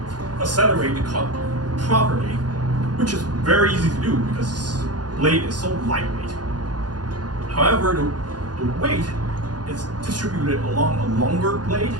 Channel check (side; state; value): left; late; 0.69 ms